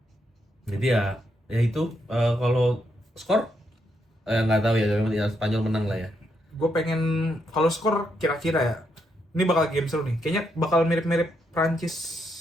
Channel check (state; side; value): normal; both; correlation 0.79